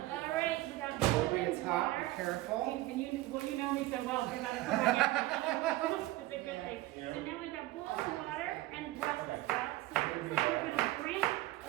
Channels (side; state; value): left; quieter; 17.6 dB